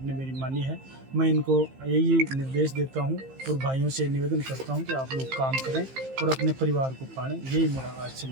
ने मेरी मानी है। मैं इनको यही निर्देश देता हूं और भाइयों से निवेदन करता हूं कि आप लोग काम करें और अपने परिवार को पालें। यही मेरा आज से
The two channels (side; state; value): left; late; 15 ms